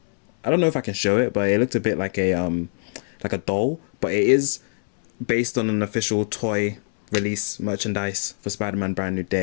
I don't know if I can show it, but it looked a bit like a doll. But it is based on an official toy release merchandise for Spider-Man Brand New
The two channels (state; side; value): silent; right; 63 dB below the other